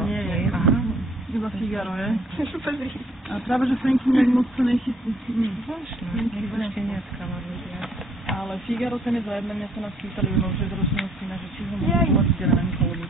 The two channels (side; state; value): both; normal; correlation 0.62